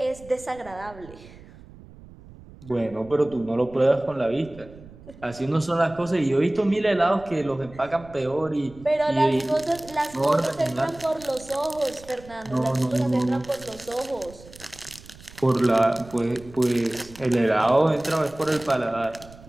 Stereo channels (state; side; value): noise; right; rumble, 20 dB below the sound